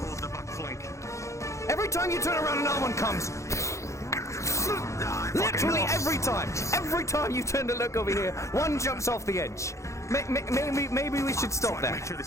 hold the back flank. Every time you turn around, another one comes! Literally every time! Every time you turn to look over here, one jumps off the edge. Maybe we should stop that. Make sure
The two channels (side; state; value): right; late; 0.15 ms